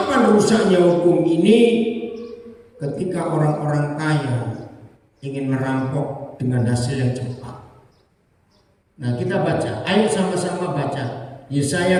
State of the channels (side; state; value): both; identical; correlation 1.00